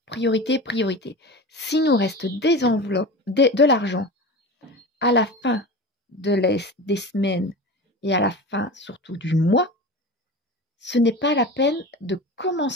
Priorité. S'il nous reste des enveloppes, de l'argent à la fin des semaines et à la fin surtout du mois, ce n'est pas la peine de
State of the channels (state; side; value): normal; both; correlation 0.30